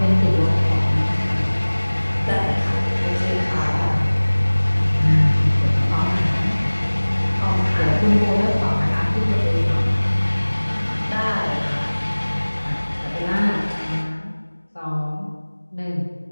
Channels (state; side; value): inverted; both; correlation -1.00